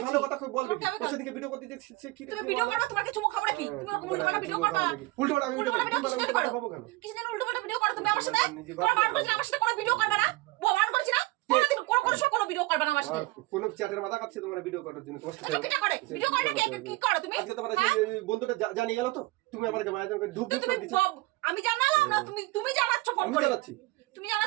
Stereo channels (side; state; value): left; quieter; 21.1 dB